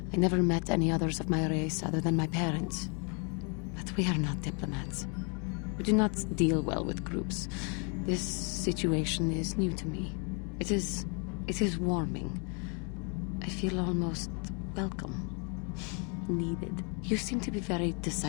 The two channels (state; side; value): quieter; right; 36.3 dB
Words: I never met any others of my race other than my parents. But we are not diplomats. We do not deal well with groups. This situation is new to me. It is warming. I feel almost welcome. Needed. You seem to be very